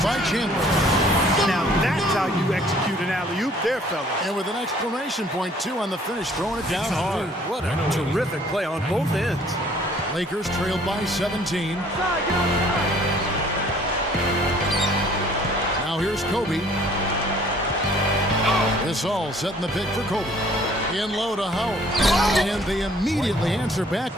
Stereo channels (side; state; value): both; normal; correlation 0.57